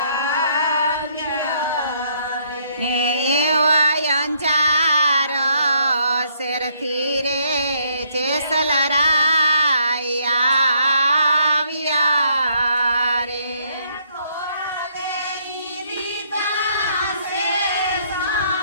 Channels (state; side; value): inverted; both; correlation -0.69